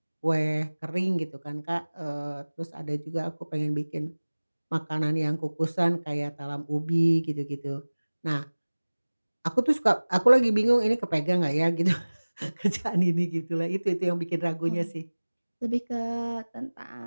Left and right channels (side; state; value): both; inverted; correlation -1.00